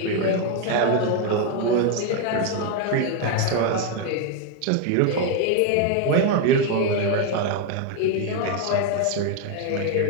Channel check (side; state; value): both; different; correlation 0.01